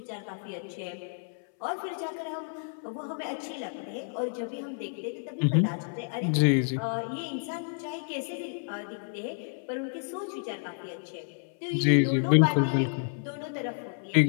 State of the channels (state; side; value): silent; right; 58 dB below the other